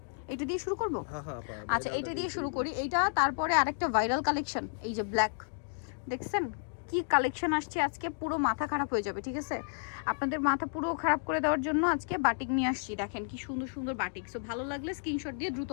এটা দিয়ে শুরু করবো। আচ্ছা, ভাইরালটা এটা দিয়ে দিয়ে শুরু শুরু করি। এইটা তারপরে আরেকটা ভাইরাল কালেকশন, এই যে ব্ল্যাক, দেখছেন কি কালেকশন আসছে আজকে, পুরো মাথা খারাপ হয়ে যাবে। ঠিক আছে, আপনাদের মাথা পুরো খারাপ করে দেওয়ার জন্য আজকে বাটিক নিয়ে আসছি। দেখেন কি সুন্দর সুন্দর বাটিক। সো ভালো লাগলে স্ক্রিনশট দিয়ে দ্রুত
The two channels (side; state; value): right; silent; digital silence